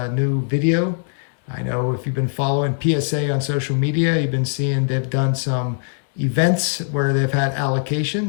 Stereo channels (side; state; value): right; silent; digital silence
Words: new video. I know if you've been following PSA on social media, you've been seeing they've done some events where they've had